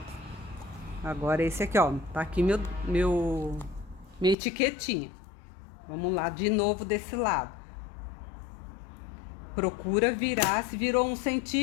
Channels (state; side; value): drops out; right; at 4.4 s